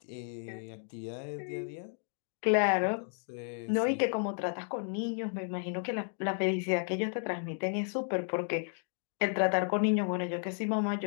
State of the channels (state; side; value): silent; right; 56 dB below the other